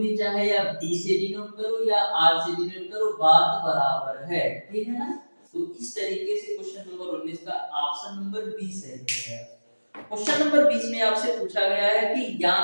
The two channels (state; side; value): inverted; both; correlation -1.00